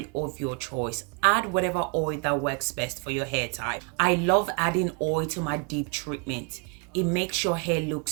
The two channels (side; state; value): left; quieter; 34.7 dB